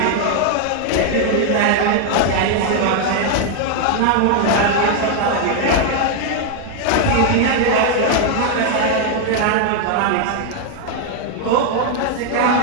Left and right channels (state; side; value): different; both; correlation 0.00